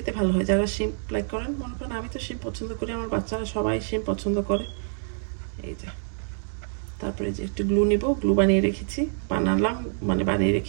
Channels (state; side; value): silent; left; digital silence